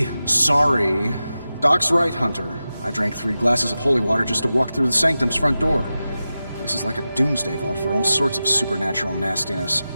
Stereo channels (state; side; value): inverted; both; correlation -0.93